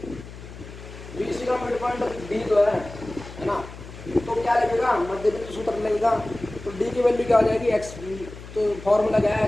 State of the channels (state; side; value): noise; left; hum, 14 dB below the sound